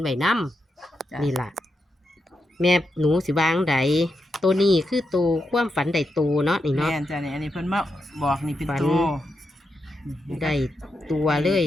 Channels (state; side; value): normal; both; correlation 0.85